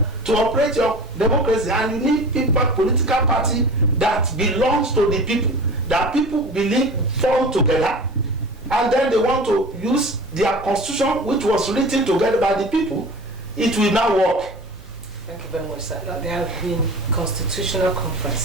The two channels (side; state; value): right; noise; hum, 25 dB below the sound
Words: to operate your democracy, and you need people, political party that belongs to the people, that people believe form together, and then they want to use their constitution, which was written together by the people. It will now work. Thank you very much, sir. Now, there have been constitutional